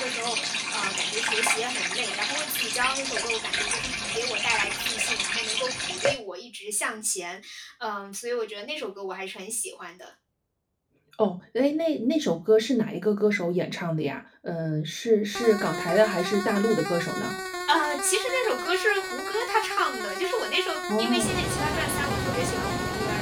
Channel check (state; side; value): identical; both; correlation 1.00